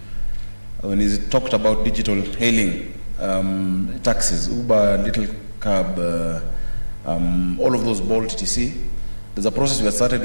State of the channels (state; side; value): inverted; both; correlation -1.00